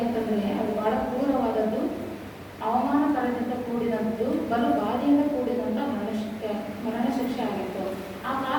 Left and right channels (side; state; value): both; identical; correlation 1.00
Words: ಅದು ಬಹಳ ಕ್ರೂರವಾದದ್ದು, ಅವಮಾನಕರದಿಂದ ಕೂಡಿದಂಥದ್ದು, ಬಲು ಬಾಧೆಯಿಂದ ಕೂಡಿದಂಥ ಮರಣ ಶಿಕ್ಷೆ ಆಗಿತ್ತು. ಆ